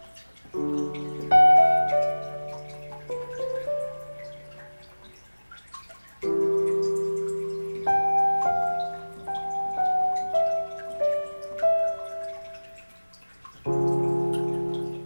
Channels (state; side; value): inverted; both; correlation -1.00